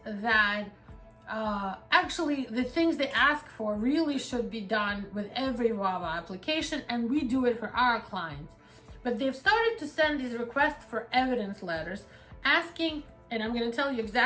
that actually the things they ask for really should be done with every VAWA application, and we do it for our clients. But they've started to send these requests for evidence letters asking, and I'm going to tell you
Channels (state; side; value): identical; both; correlation 1.00